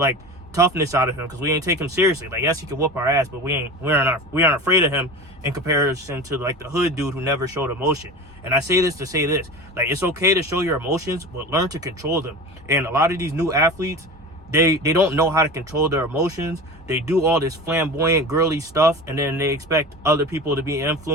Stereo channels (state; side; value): normal; both; correlation 0.33